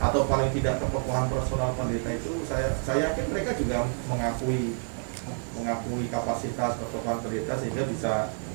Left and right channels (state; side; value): silent; left; 59 dB below the other